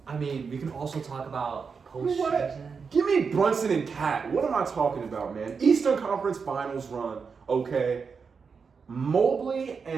I mean, we can also talk about Postseason. Give me Brunson and Cat. What am I talking about, man? Eastern Conference Finals run, okay? Mobley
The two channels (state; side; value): quieter; left; 5.5 dB